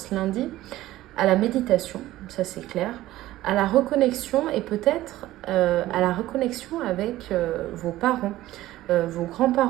lundi, à la méditation, ça c'est clair, à la reconnexion et peut-être à la reconnexion avec vos parents, vos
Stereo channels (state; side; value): quieter; left; 15.7 dB